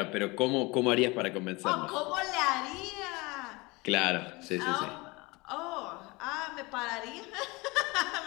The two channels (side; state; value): right; quieter; 24.2 dB